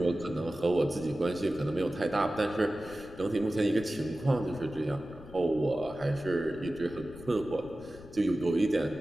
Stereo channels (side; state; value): left; noise; rumble, 18 dB below the sound